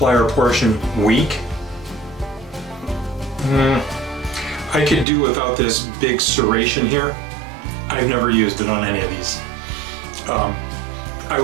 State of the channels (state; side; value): drops out; left; at 5.1 s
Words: portion weak. I could do without this big serration here. I've never used it on any of these. I